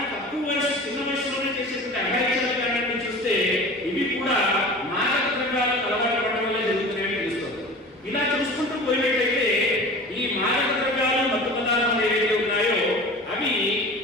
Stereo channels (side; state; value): both; normal; correlation 0.37